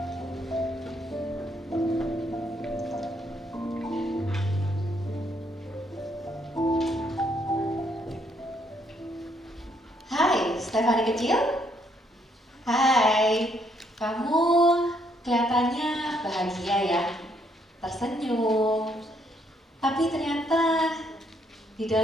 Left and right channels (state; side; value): normal; both; correlation 0.71